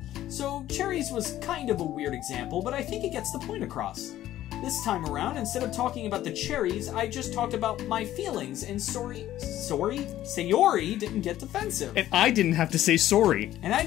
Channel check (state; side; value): quieter; right; 13.4 dB